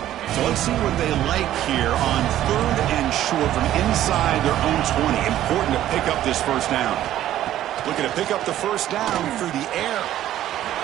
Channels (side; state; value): left; quieter; 12.7 dB